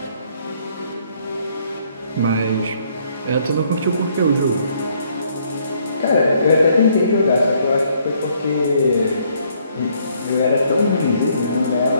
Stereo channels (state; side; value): inverted; both; correlation -0.67